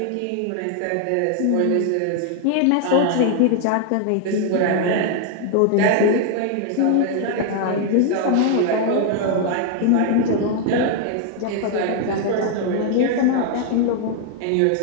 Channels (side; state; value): both; different; correlation 0.00